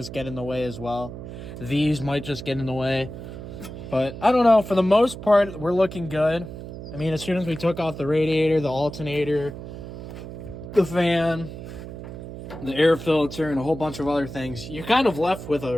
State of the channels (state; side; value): noise; right; hum, 11 dB below the sound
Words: get in the way as well. These might just get in the way. But I don't know. For the most part, we're looking good. I mean, as soon as we took off the radiator, the alternator, the fan, the air filter, and a whole bunch of other things, you're kind of left with